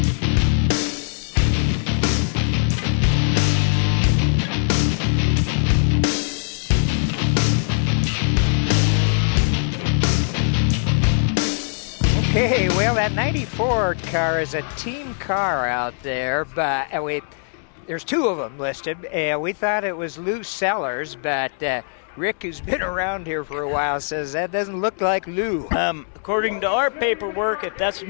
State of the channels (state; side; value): silent; right; digital silence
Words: Okay, well, that 94 car is a team car out there, but there's two of them listed. We thought it was Lou Sellers, but Rick, who's been around here for a while, says that doesn't look like Lou. According to our paperwork, if that's